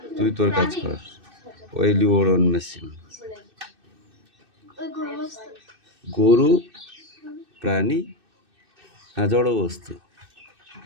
তুই তোর কাজ কর। ওইলি ওরন মেশিন। গরু প্রাণী না জড়বস্তু?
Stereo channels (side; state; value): left; late; 2.6 ms